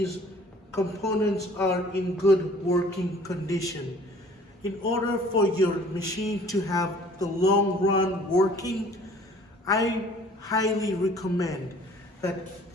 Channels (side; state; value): both; normal; correlation 0.52